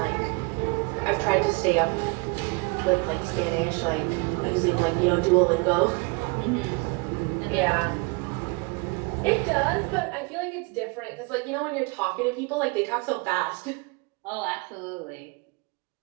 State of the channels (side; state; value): left; quieter; 29.7 dB